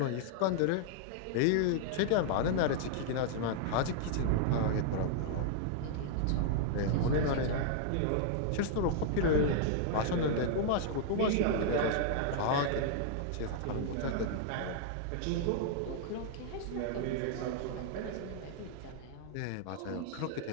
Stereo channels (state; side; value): different; both; correlation -0.01